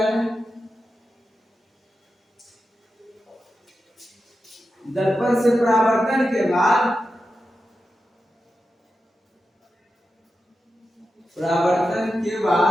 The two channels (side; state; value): both; normal; correlation 0.90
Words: दर्पण से परावर्तन के बाद, परावर्तन के